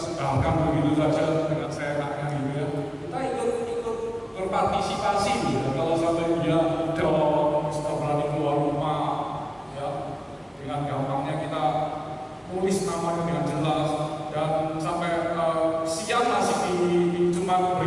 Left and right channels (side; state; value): both; identical; correlation 1.00